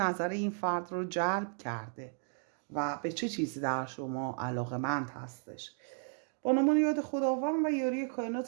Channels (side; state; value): left; silent; 55 dB below the other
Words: این فرد رو جلب کرده و به چه چیزی در شما علاقمند هستش. با نام یاد خداوند و یاری